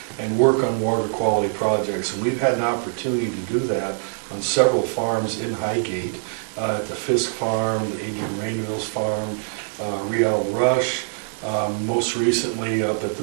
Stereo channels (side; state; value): left; silent; 63 dB below the other